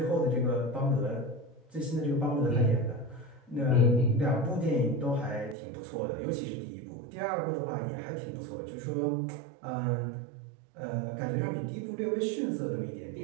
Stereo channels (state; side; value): drops out; left; at 5.6 s